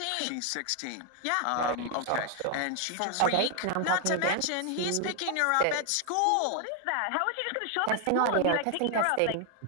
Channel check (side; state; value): both; different; correlation 0.00